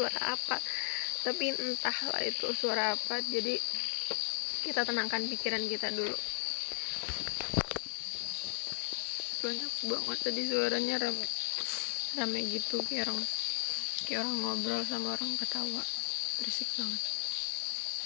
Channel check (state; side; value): silent; right; 54 dB below the other